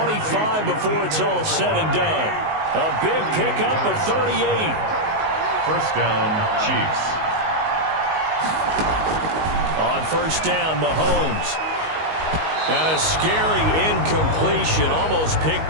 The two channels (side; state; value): left; late; 19 ms